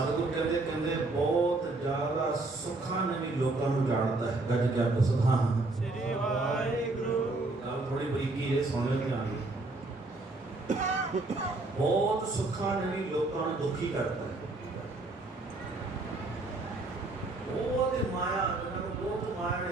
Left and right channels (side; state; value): left; quieter; 3.1 dB